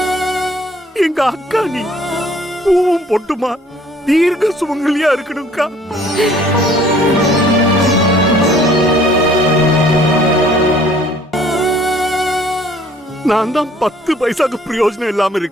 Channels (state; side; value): normal; both; correlation 0.57